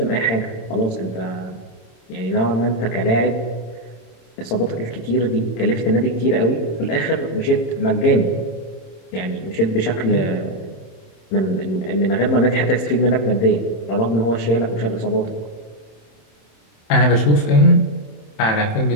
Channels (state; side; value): late; right; 27 ms